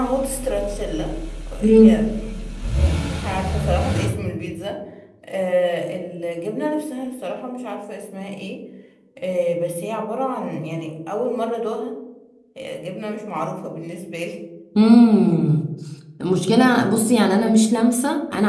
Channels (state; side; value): identical; both; correlation 1.00